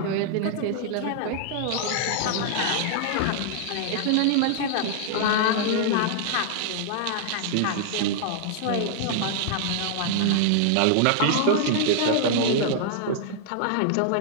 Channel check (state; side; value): different; both; correlation -0.01